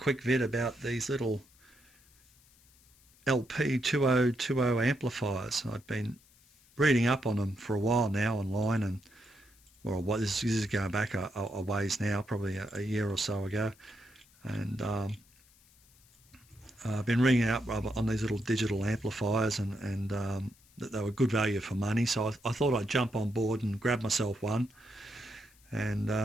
vid about these little Lepy2020 amplifiers. I've been reading up on them for a while now online, and this is going back a ways now, probably a year or so ago, and I've been reading up on these little digital amplifiers, and that they were good value for money, so I thought I'd jump on board and grab myself one, and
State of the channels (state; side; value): noise; left; hiss, 29 dB below the sound